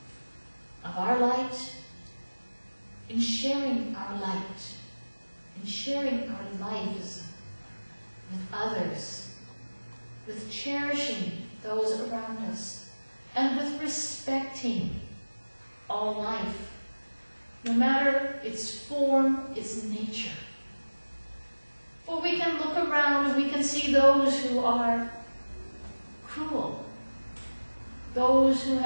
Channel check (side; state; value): both; inverted; correlation -1.00